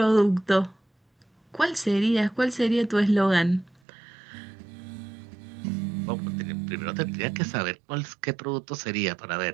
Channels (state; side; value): drops out; left; at 3.8 s